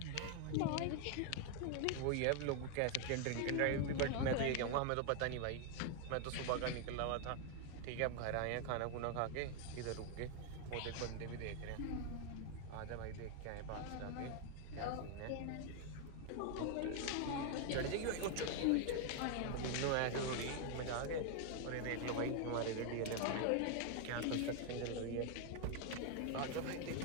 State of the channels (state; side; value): different; both; correlation 0.00